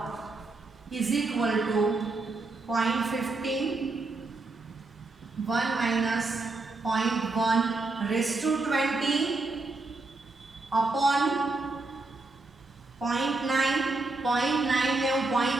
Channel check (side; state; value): left; quieter; 3.4 dB